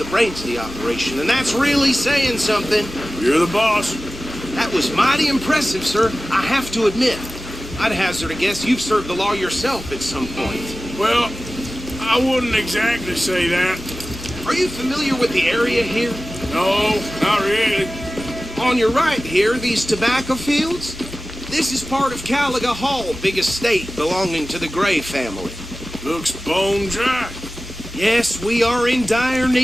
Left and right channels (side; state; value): both; normal; correlation 0.95